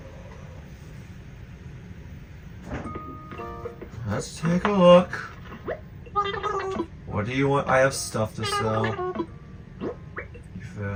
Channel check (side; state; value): both; identical; correlation 1.00